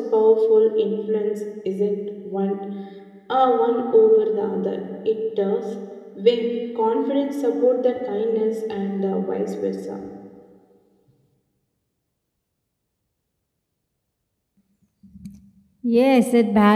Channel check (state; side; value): identical; both; correlation 1.00